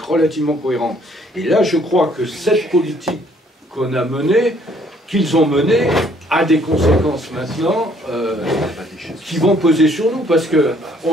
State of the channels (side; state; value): both; normal; correlation 0.63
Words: relativement cohérente. Et là, je crois que cette politique qu'on a menée, qu'ils ont menée, a des conséquences maintenant qui vont peser sur nous, parce